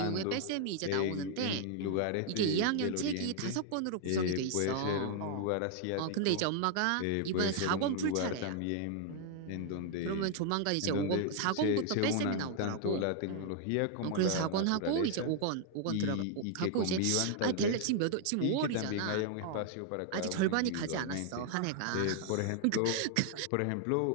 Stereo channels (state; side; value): different; both; correlation 0.00